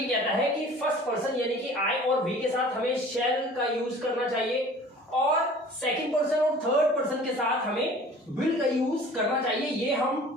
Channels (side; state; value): both; normal; correlation 0.46